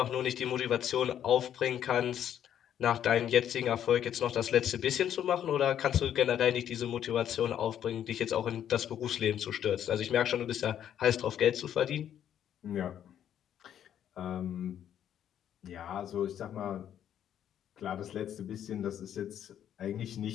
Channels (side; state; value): right; quieter; 10.0 dB